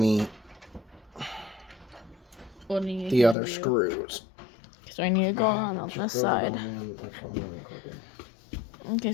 the other screws. So I need to go on this side. Okay,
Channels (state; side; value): drops out; right; at 3.4 s